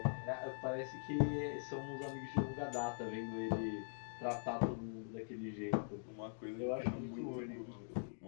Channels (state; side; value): silent; right; digital silence